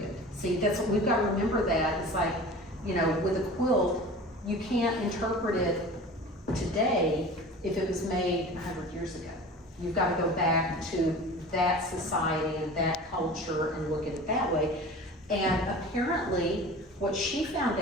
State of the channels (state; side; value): normal; both; correlation 0.38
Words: see, that's what we've got to remember. That it's like, with a quilt, you can't interpret it today if it was made 100 years ago. You've got to go back to that society and that culture and look at it that way. And apparently, what she found